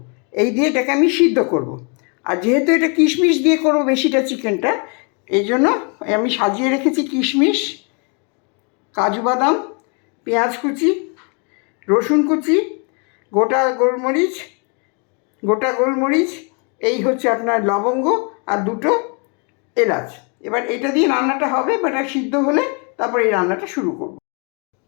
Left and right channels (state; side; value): quieter; right; 35.9 dB